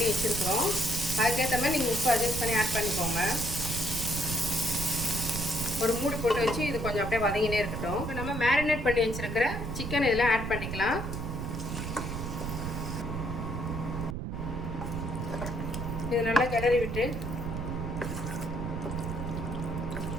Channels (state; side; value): noise; right; rumble, 4 dB below the sound